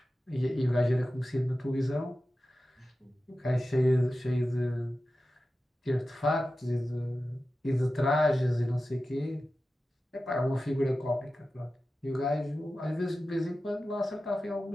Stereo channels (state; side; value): normal; both; correlation 0.94